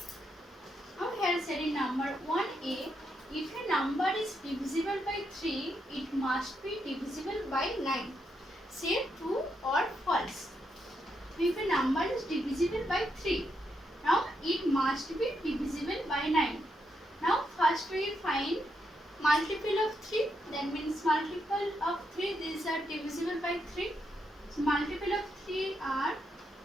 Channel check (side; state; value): both; normal; correlation 0.81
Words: Now here said in number 1a, if a number is divisible by 3, it must be divisible by 9. Say true or false. If a number is divisible by 3, now it must be divisible by 9. Now first we find multiple of 3, that means multiple of 3, these are divisible by 3. So multiple of 3 are